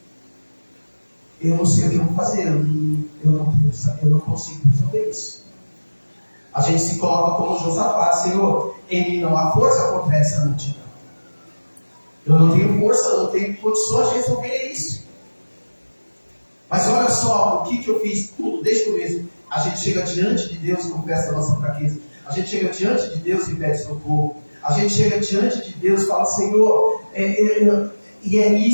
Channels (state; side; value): inverted; both; correlation -1.00